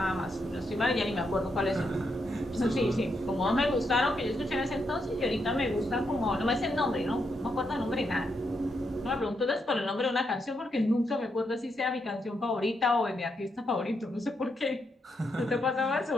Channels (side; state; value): both; normal; correlation 0.81